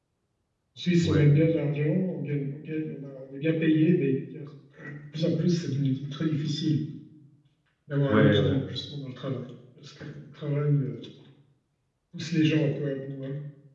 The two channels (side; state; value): both; identical; correlation 1.00